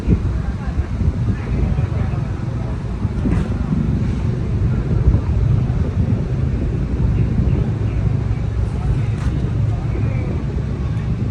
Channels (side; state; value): both; identical; correlation 1.00